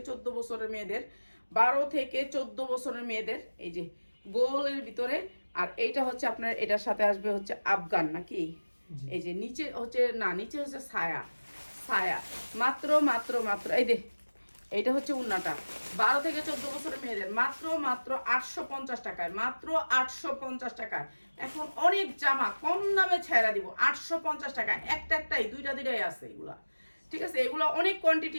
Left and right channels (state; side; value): inverted; both; correlation -1.00